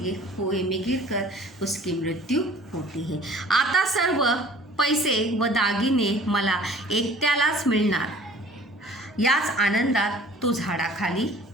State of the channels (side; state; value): both; normal; correlation 0.49